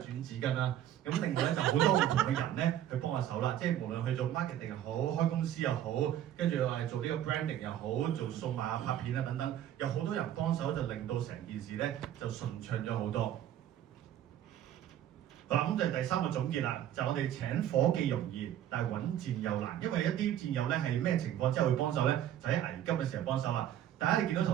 轉紙巾啦。咁另外咧就好多唔同嘅人咧去幫下手啦。即係無論去做 marketing 又好，開公司又好，跟住話做呢個 branding 又好，做數碼拍片啊等等，有好多人幫手就令到成件事咧就順暢咗好多。好啦，咁就係第3個總結啦，就我哋請夥計容易，但係揾戰友難，因為一啲戰友咧係咩情況之後會幫手咧，就喺危急嘅時候幫手啦。大家你見到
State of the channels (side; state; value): left; quieter; 11.4 dB